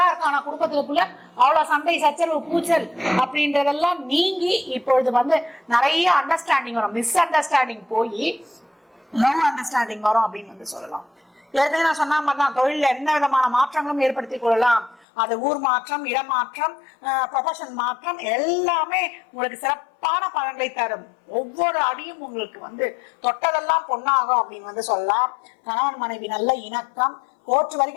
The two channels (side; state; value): right; drops out; at 15.1 s